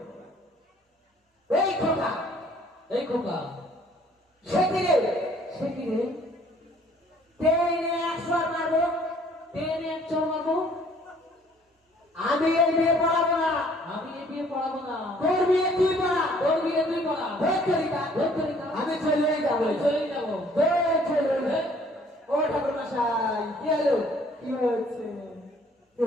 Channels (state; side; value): normal; both; correlation 0.58